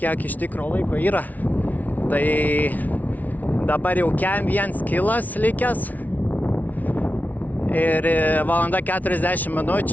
iš tikro laiko yra. Tai dabar jau kem 1 kilas likęs. Ir valanda 40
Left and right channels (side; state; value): right; late; 0.076 ms